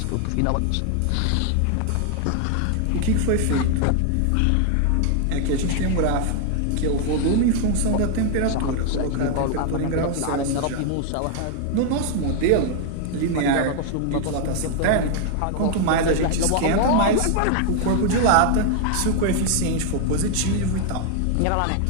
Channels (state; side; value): different; both; correlation 0.00